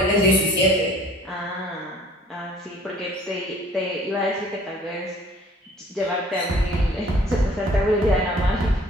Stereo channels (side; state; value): both; normal; correlation 0.53